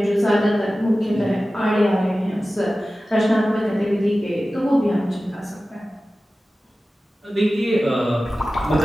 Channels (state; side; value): normal; both; correlation 0.96